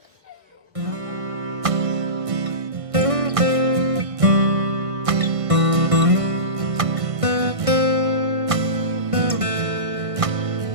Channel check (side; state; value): left; late; 1.6 ms